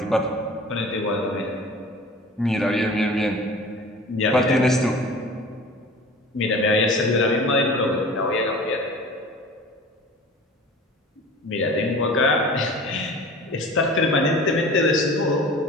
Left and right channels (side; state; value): both; normal; correlation 0.41